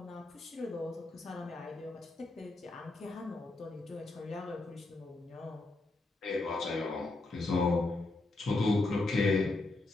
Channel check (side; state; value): right; quieter; 3.0 dB